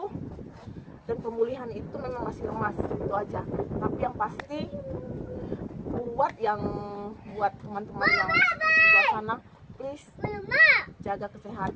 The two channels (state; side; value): identical; both; correlation 1.00